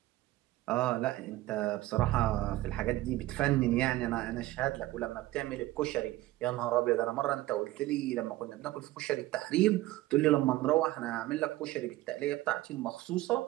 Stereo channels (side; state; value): left; quieter; 17.2 dB